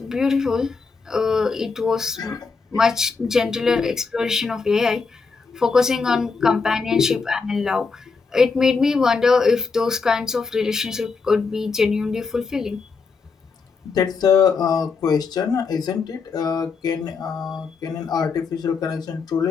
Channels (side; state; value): right; quieter; 4.8 dB